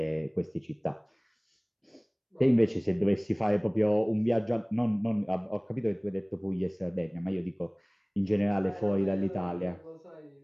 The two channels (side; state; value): both; identical; correlation 1.00